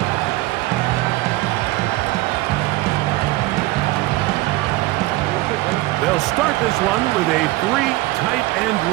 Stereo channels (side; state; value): left; quieter; 19.3 dB